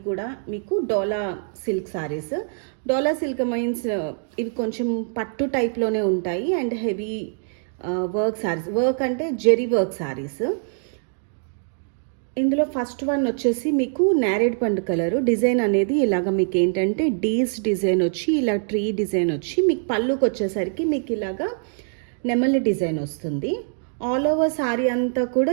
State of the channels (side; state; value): left; silent; digital silence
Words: కూడా మీకు డోలా సిల్క్ సారీస్. డోలా సిల్క్ మీన్స్ ఇవి కొంచెం పట్టు టైప్లోనే ఉంటాయి and heavy work saris. Work అంటే జెరీ వర్క్ సారీస్. ఇందులో ఫస్ట్ వన్ వచ్చేసి మీకు నేరేడ్ పండు కలరు. డిజైన్ అనేది ఇలాగ మీకు ఏంటంటే డీస్ డిజైన్ వచ్చి ఇలా ట్రీ డిజైన్ వచ్చి మీకు పళ్ళుకి వచ్చేసరికి మీకు ఇలాగా నెమలి డిజైన్ వస్తుంది. ఆల్ ఓవర్ సారీ అంతా కూడా